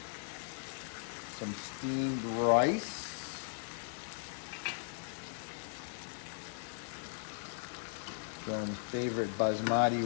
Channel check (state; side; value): silent; right; digital silence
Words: some steamed rice. Some favorite basmati